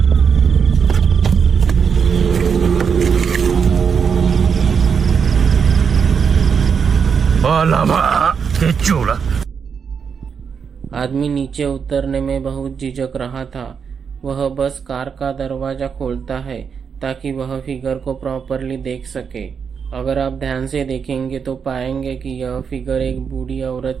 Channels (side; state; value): left; quieter; 6.5 dB